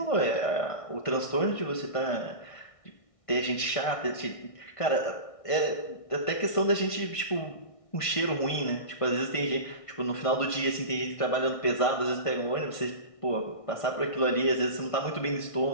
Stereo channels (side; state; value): right; late; 1.5 ms